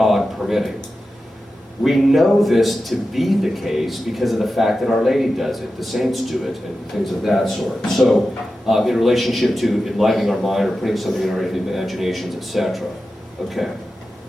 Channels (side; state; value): both; normal; correlation 0.92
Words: permitting. We know this to be the case because of the fact that Our Lady does it, the saints do it, and things of that sort. So in relationship to enlightening our mind or putting something in our imaginations, etc. Okay.